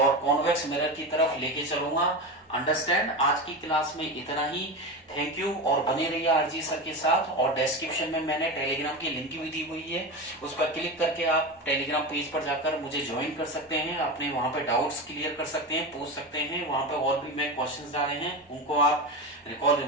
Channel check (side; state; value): both; normal; correlation 0.22